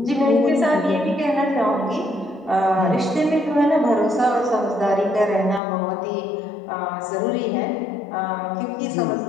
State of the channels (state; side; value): drops out; right; at 5.6 s